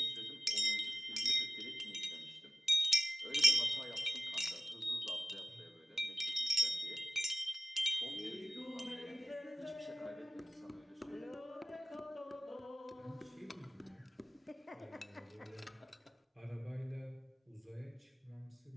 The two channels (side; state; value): both; normal; correlation 0.95